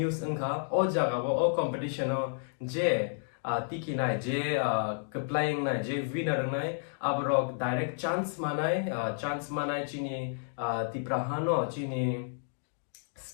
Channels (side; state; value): right; silent; digital silence